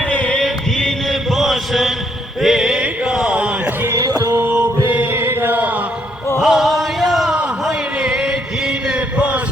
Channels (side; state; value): both; normal; correlation 0.71